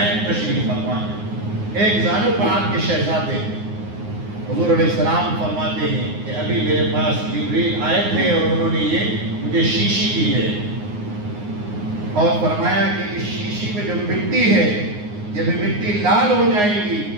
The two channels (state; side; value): late; left; 9.6 ms